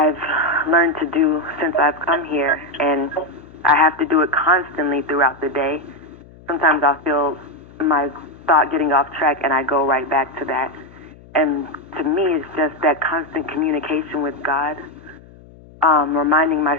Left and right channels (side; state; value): left; noise; hum, 22 dB below the sound